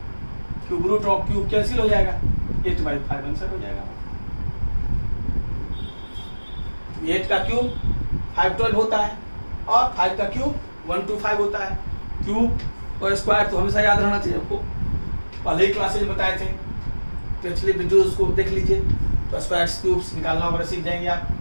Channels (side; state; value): both; inverted; correlation -1.00